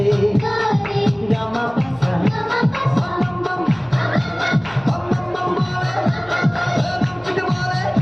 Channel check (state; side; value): noise; right; rumble, 27 dB below the sound